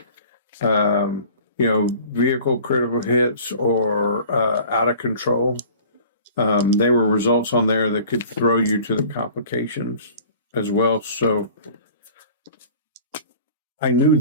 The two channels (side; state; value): both; inverted; correlation -0.46